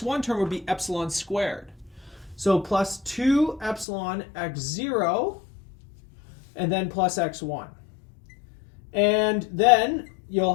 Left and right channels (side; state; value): right; drops out; at 3.9 s